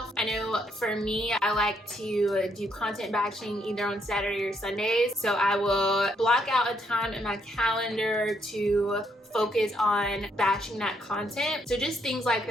I know for me, I like to do content batching either on Saturday or Sundays. So I will block out a time in my calendar to focus on batching that content. So just things like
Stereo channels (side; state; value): both; normal; correlation 0.74